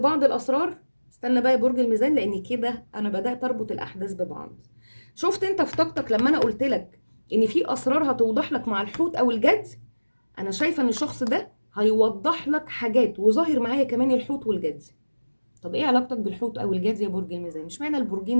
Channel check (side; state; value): both; inverted; correlation -1.00